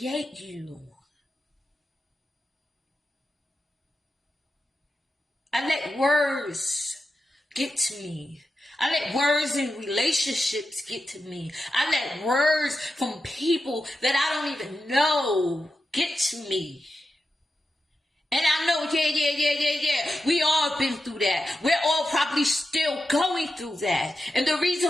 you. I let words get to me. I let words in relationships get to me. I let words from people that I don't even know get to me. And I know, yeah. We all been through that. We're all probably still going through that. And the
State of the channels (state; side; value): normal; both; correlation 0.90